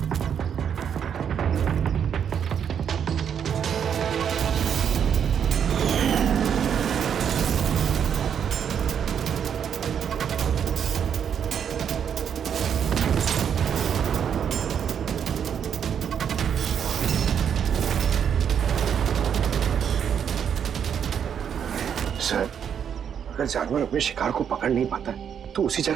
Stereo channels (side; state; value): left; quieter; 8.1 dB